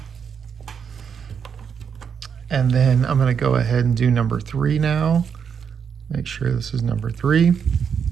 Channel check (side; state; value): left; quieter; 7.0 dB